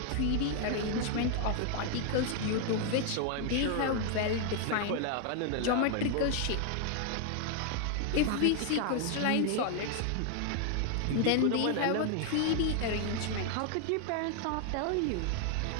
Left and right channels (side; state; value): both; different; correlation 0.00